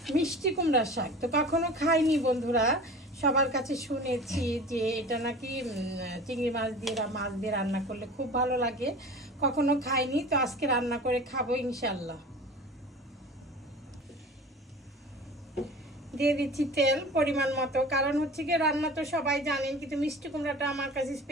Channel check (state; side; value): normal; both; correlation 0.38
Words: মিষ্টি কুমড়ার শাক। তো কখনো খাইনি বন্ধুরা, সবার কাছে শুনেছি যে এটা নাকি চিংড়ি মাছ দিয়ে রান্না করলে খুব ভালো লাগে, কখনো খাইনি। তো আজকে রান্না করে খাবো ইনশাল্লাহ। দিয়ে দিচ্ছি তেল পরিমাণ মতো, কারণ হচ্ছে কি রান্না তো সবাই জানেন, কিন্তু মিষ্টি কুমড়াটা আমার কাছে